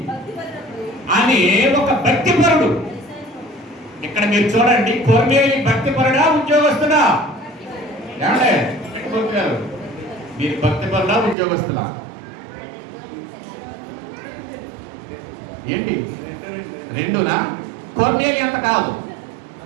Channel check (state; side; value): drops out; left; at 11.4 s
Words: అని ఒక భక్తిపరుడు. ఇక్కడ మీరు చూడండి, కొర్నేలి భక్తిపరుడా ఉద్యోగస్తుడా? ఏమంటే మీరు భక్తిపరుడా ఉద్యోగస్తులా? ఏంటి? 2నా? కొర్నేలి అంత కాదు.